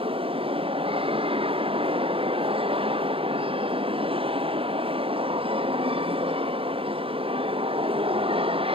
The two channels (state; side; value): late; left; 0.27 ms